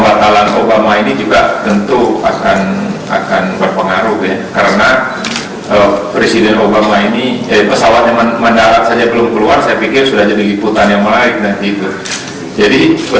Obama ini juga tentu akan berpengaruh ya, karena Presiden Obama ini pesawatnya mendarat saja belum keluar, saya pikir sudah jadi liputan yang menarik nanti itu. Jadi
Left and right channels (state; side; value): identical; both; correlation 1.00